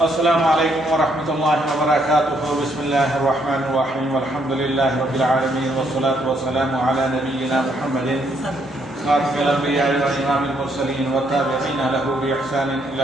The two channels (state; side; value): normal; both; correlation 0.72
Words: السلام علیکم ورحمۃ اللہ وبرکاتہ. بسم اللہ الرحمن الرحیم. الحمد للہ رب العالمین والصلاة والسلام علی نبینا محمد خاتم الانبیاء وامام المرسلین والتابعین له باحسان